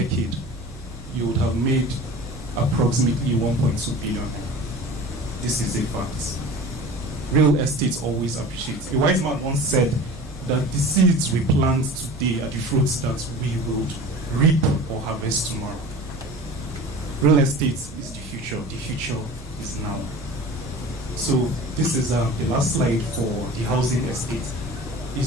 you would have made approximately 1.2 billion. This is a fact. Real estate always appreciates. A wise man once said that the seeds we plant today are the fruits that we will reap or harvest tomorrow. Real estate is the future. The future is now. So this is the last slide for the housing estate.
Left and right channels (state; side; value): normal; both; correlation 0.38